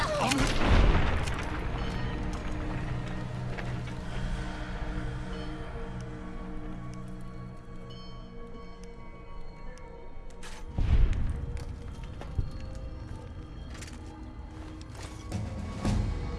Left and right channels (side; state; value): both; identical; correlation 1.00